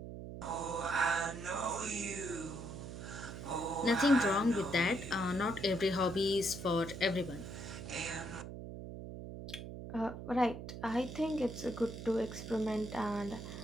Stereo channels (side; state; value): right; noise; hum, 9 dB below the sound